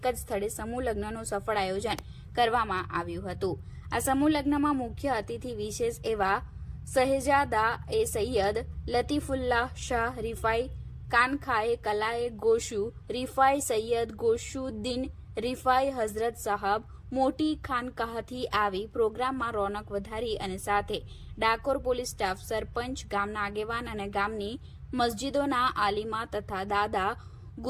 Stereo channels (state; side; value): identical; both; correlation 1.00